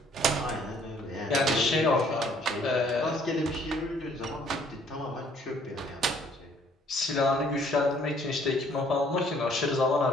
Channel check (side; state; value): both; normal; correlation 0.61